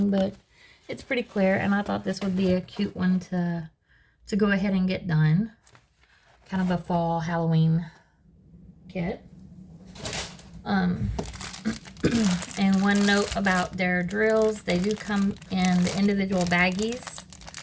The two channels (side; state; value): both; identical; correlation 1.00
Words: but it's pretty clear, and I thought this would be a cute one to go ahead and get done. Kind of a fall Halloween kit. And one note about their drills, they do come in the individual baggies.